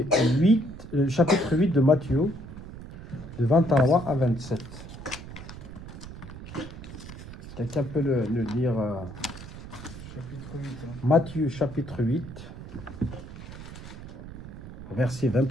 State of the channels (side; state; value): right; noise; rumble, 13 dB below the sound